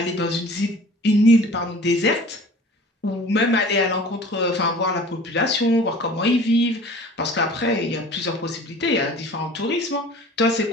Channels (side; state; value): both; normal; correlation 0.45